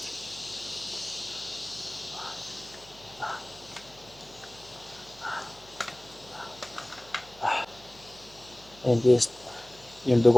Ayan guys, yung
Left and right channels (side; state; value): right; noise; hum, 22 dB below the sound